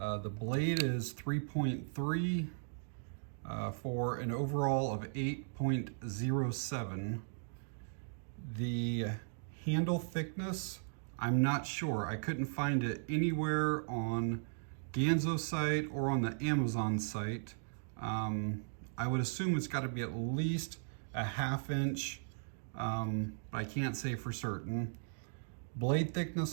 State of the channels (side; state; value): left; silent; digital silence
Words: blade is 3.3. For an overall of 8.07. The handle thickness, I'm not sure. I couldn't find it anywhere on Ganzo's site or on the Amazon site. I would assume it's got to be at least a ½ inch, but I can't say for certain. Blade